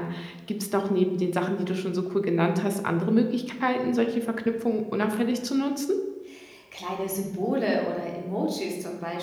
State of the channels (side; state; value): both; identical; correlation 1.00